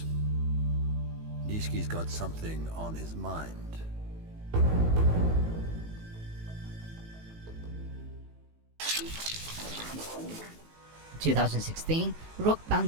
Nishiki's got something on his mind. 2016, rock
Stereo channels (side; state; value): left; late; 18 ms